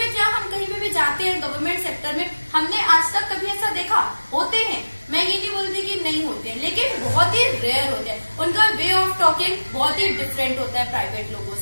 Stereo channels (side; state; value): both; inverted; correlation -1.00